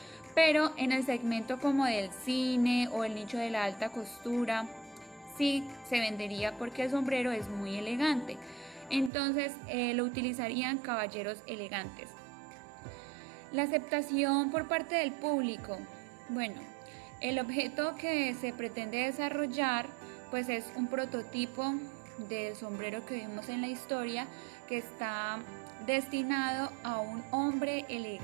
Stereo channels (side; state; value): left; drops out; at 9.1 s